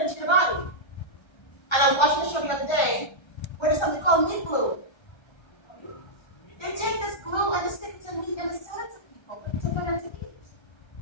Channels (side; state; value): right; late; 1.3 ms